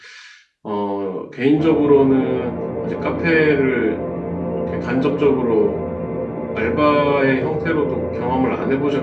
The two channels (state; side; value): identical; both; correlation 1.00